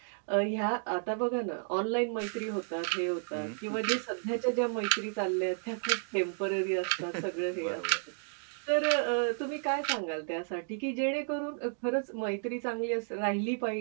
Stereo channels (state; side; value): silent; left; digital silence